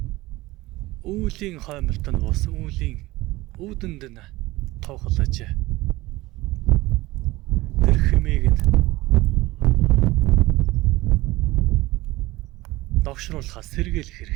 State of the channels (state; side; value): quieter; left; 19.3 dB